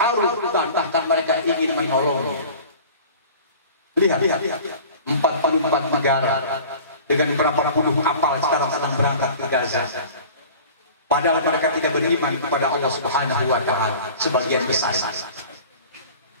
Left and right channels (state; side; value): inverted; both; correlation -0.42